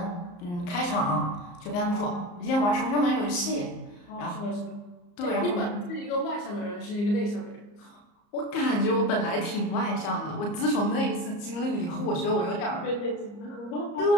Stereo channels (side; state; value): right; late; 34 ms